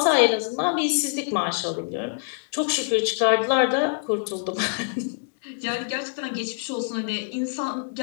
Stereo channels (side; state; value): right; silent; digital silence